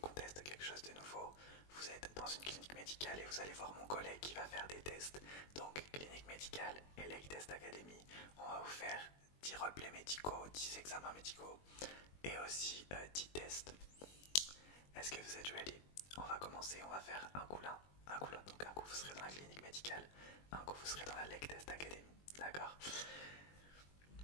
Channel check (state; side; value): late; right; 21 ms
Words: on teste quelque chose de nouveau. Vous êtes dans une clinique médicale et vous allez voir mon collègue qui va faire des tests. Donc, clinique médicale et Lake Test Academy, on va vous faire 10 roleplays médicaux, 10 examens médicaux et aussi 10 tests. Est-ce que vous êtes ready? On va commencer, on va faire un coup l'un, un coup l'autre. Donc un coup vous serez dans la clinique médicale, un coup vous serez dans la Lake Test Academy. D'accord?